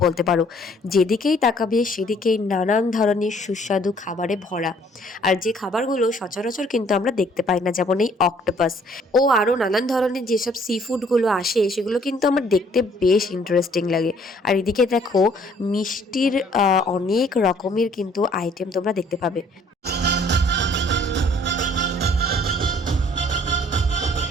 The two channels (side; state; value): both; normal; correlation 0.60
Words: বলতে পারো। যেদিকেই তাকাবে সেদিকেই নানান ধরনের সুস্বাদু খাবারে ভরা, আর যে খাবারগুলো সচরাচর কিন্তু আমরা দেখতে পাই না, যেমন এই অক্টোপাস ও আরও নানান ধরনের যেসব সি ফুডগুলো আসে সেগুলো কিন্তু আমার দেখতে বেশ ইন্টারেস্টিং লাগে। আর এদিকে দেখো, মিষ্টির অনেক রকমের কিন্তু আইটেম তোমরা দেখতে পাবে।